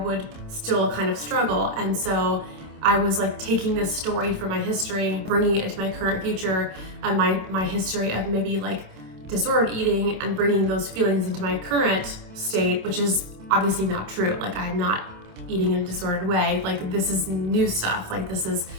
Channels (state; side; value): late; left; 27 ms